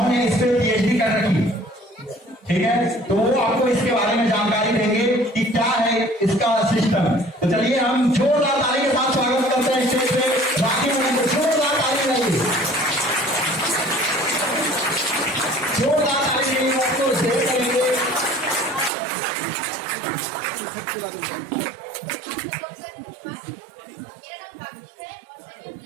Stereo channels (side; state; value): left; drops out; at 18.9 s